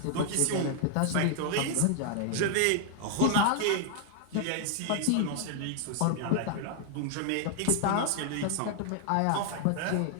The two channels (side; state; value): both; different; correlation 0.00